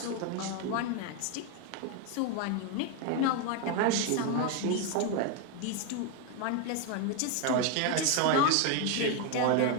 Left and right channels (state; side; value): different; both; correlation 0.01